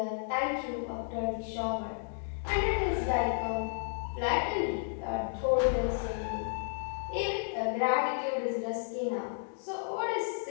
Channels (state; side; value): silent; right; digital silence